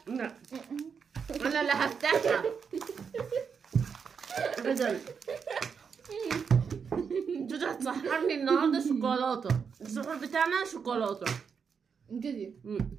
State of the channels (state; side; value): quieter; left; 6.3 dB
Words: لا انا اللي هفتحها ابدا. جودي هتسحرني النهارده شوكولاته. السحور بتاعنا شوكولاته كده.